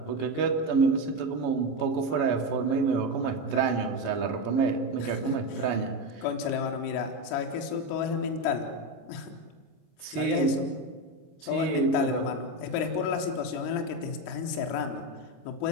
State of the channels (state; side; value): late; right; 26 ms